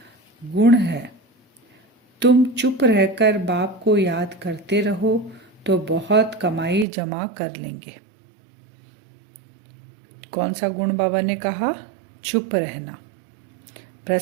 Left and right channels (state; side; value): drops out; left; at 6.9 s